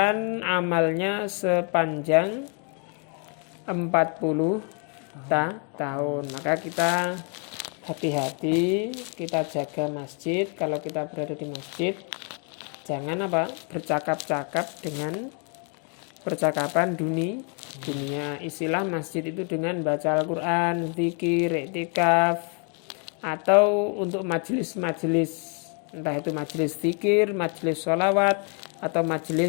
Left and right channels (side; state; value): right; quieter; 38.6 dB